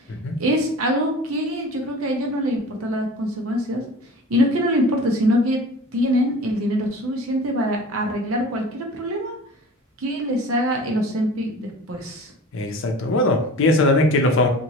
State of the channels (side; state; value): both; normal; correlation 0.40